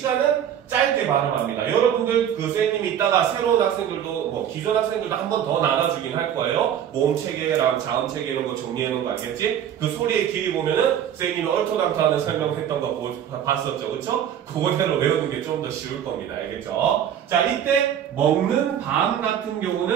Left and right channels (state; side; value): quieter; left; 9.6 dB